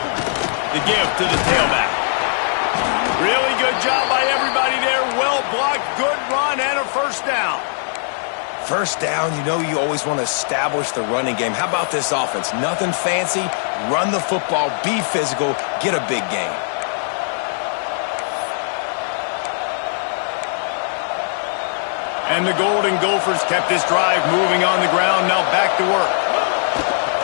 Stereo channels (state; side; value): silent; right; digital silence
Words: The give to the tailback. Really good job by everybody there. Well blocked, good run, and a 1st down. 1st down, you know you always want to establish the running game. How about this offense? Nothing fancy. Run the football, be physical, get a big gain. And the Golden Gophers kept this drive moving on the ground. Now back to work.